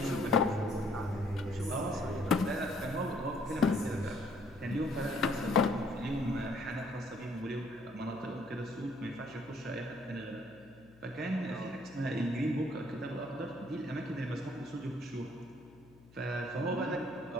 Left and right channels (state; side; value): noise; left; hum, 25 dB below the sound